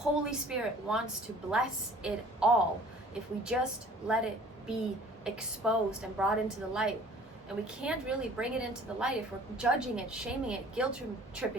Spirit wants to bless it all if we just let it be exposed and brought into the light. And we can't really bring it into the light if we're judging it, shaming it, guilt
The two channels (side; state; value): both; normal; correlation 0.50